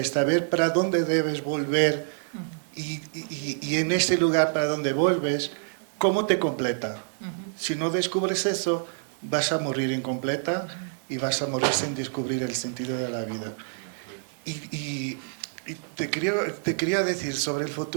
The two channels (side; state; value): left; silent; digital silence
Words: saber para dónde debes volver. Y en ese lugar para donde vuelves, ¿cómo te completa? Si no descubres eso, vas a morir incompleta y vas a morir sin descubrir el sentido de la vida. Y te quería decir sobre el